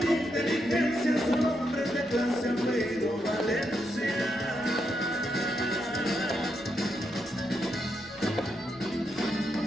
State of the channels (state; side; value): noise; left; rumble, 29 dB below the sound